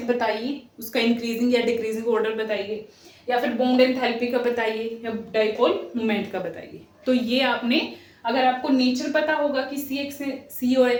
बताइए, उसका इंक्रीजिंग या डिक्रीजिंग ऑर्डर बताइए, या फिर बॉन्ड एंथैल्पी का बताइए, या डाइपोल मोमेंट का बताइए। तो ये आपने, अगर आपको नेचर पता होगा कि C और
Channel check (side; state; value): both; identical; correlation 1.00